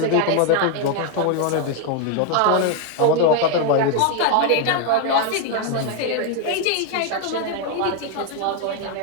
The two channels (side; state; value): both; different; correlation 0.01